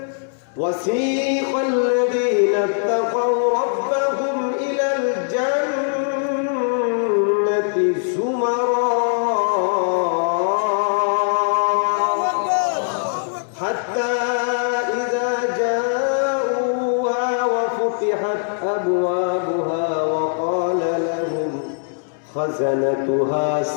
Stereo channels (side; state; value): right; silent; 65 dB below the other